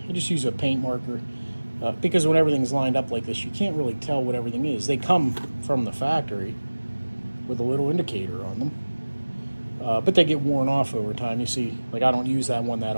just use a paint marker because when everything's lined up like this, you can't really tell what everything is. They come from the factory with a little indicator on them, but they get worn off over time. You see, like, I don't use that one that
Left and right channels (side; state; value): both; inverted; correlation -1.00